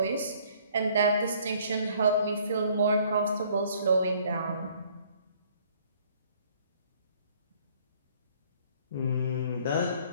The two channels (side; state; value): both; inverted; correlation -0.59